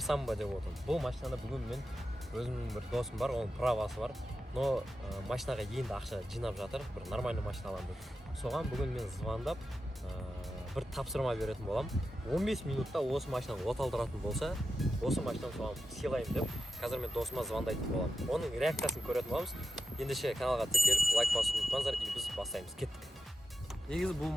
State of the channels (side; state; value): both; normal; correlation 0.91